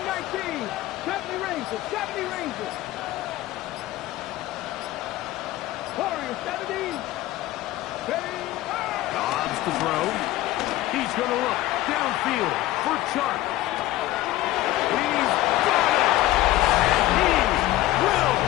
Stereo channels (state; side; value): quieter; right; 15.8 dB